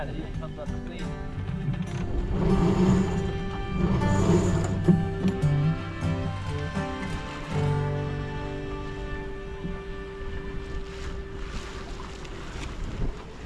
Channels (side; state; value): both; identical; correlation 1.00